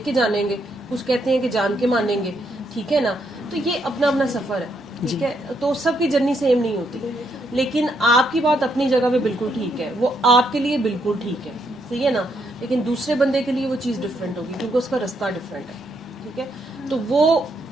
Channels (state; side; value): normal; both; correlation 0.76